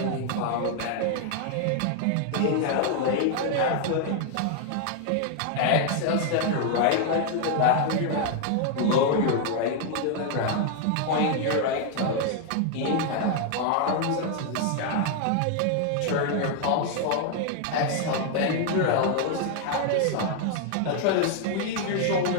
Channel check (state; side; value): different; both; correlation 0.00